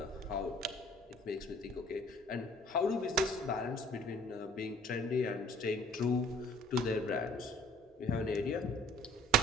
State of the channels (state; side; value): normal; both; correlation 0.53